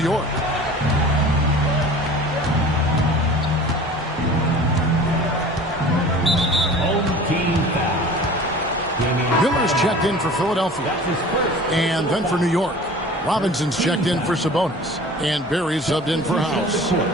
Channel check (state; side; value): normal; both; correlation 0.42